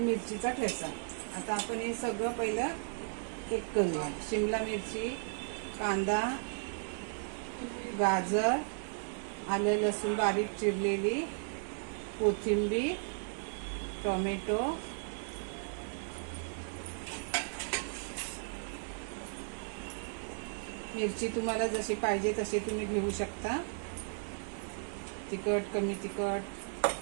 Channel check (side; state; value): left; silent; 54 dB below the other